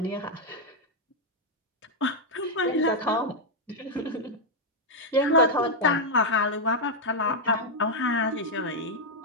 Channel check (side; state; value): both; normal; correlation -0.01